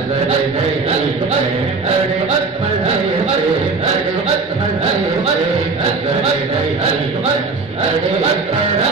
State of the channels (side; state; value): left; quieter; 4.1 dB